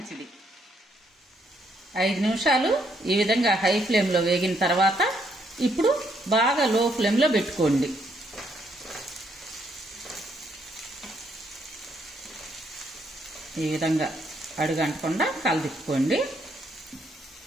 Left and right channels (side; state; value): both; normal; correlation 0.72